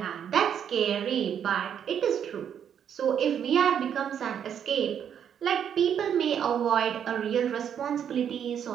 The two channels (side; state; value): left; quieter; 8.6 dB